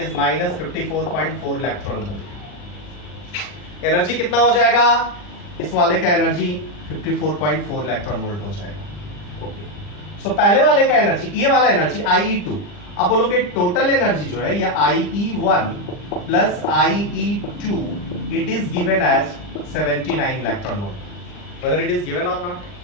-54.4 electron volt. Energy कितना हो जाएगा? इस वाले का एनर्जी 54.4 इलेक्ट्रॉन वोल्ट हो जाएगा। ओके, सो पहले वाले का एनर्जी, ये वाला एनर्जी IE2। अब बोलोगे टोटल एनर्जी जो है, या IE1 plus IE2, it is given as 79 electron volt. Whether it is given or not?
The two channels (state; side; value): late; right; 40 ms